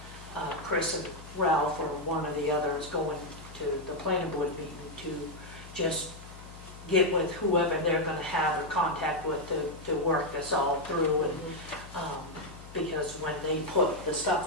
Chris and Ralph, or one or the other, is going to the planning board meeting to just get with whoever they're gonna have or contact with to work this all through, and, because when they put the stuff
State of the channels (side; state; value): left; noise; hum, 16 dB below the sound